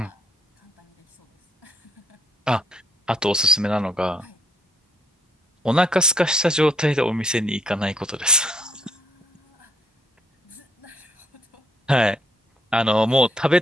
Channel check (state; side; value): normal; both; correlation 0.69